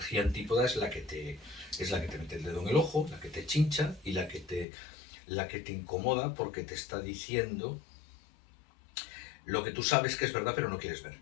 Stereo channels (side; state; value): right; drops out; at 4.7 s